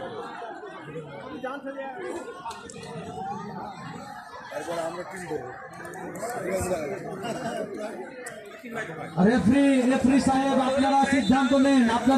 তারপর আমরা টিম দেবো। রেফারি সাহেব আপনারা সিদ্ধান্ত নেন।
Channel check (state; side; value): identical; both; correlation 1.00